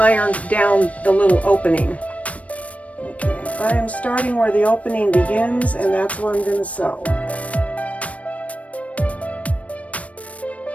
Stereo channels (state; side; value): late; right; 0.066 ms